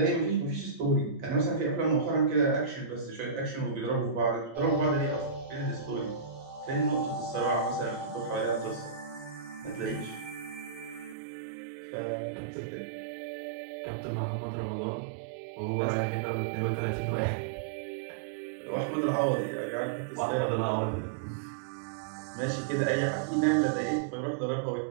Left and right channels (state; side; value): drops out; left; at 11.2 s